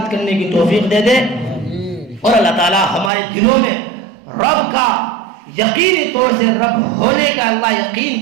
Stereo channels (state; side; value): drops out; left; at 3.1 s